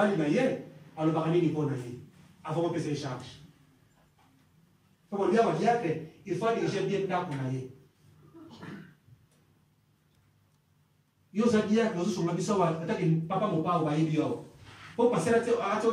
Naye, à le barani du Ponaye. Avant de repérer les charges. Comme on dit à Diacre, il faut diriger bien dans Ponaye. Yo za diacre nous sommes habitués à attaquer papa mon papa ou à Ibio. Pour passer à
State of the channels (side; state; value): both; identical; correlation 1.00